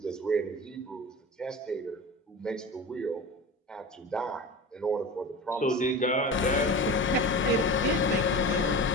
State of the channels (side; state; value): both; normal; correlation 0.32